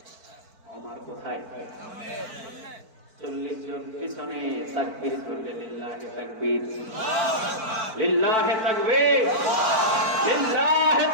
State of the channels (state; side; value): late; left; 4.5 ms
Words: ওমর কোথায়? 40 জন পিছনে তাকবীর করলে, লিল্লাহি তাকবীর, লিল্লাহি তাকবীর, লিল্লাহি